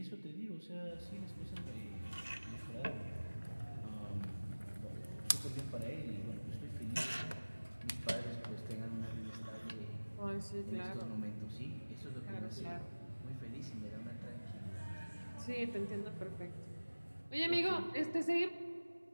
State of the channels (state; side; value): inverted; both; correlation -1.00